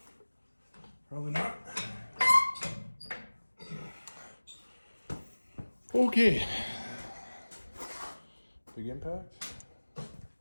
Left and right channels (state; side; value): inverted; both; correlation -1.00